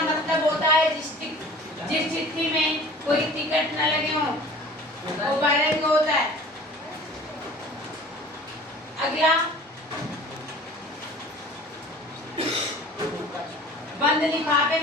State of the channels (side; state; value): both; normal; correlation 0.44